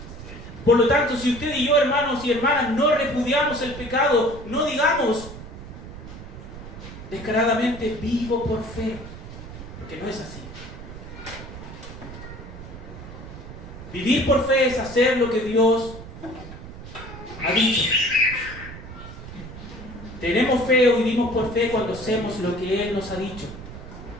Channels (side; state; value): right; noise; rumble, 13 dB below the sound